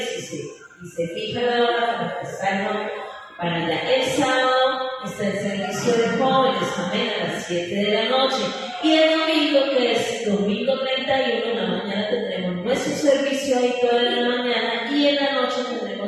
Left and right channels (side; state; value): both; identical; correlation 1.00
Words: y se fija la hora para estar para allá. El sábado está el servicio de jóvenes, amén, a las 7 de la noche. Y el domingo, que es domingo 31, en la mañana tendremos nuestro servicio ahí toda la mañana, y en la noche